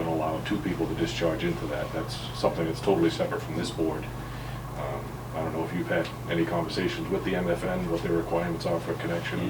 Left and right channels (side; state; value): both; identical; correlation 1.00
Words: allow two people to discharge into that. That's something that's totally separate from this board. I don't know if you've had any conversations with the MFN, what their requirements are for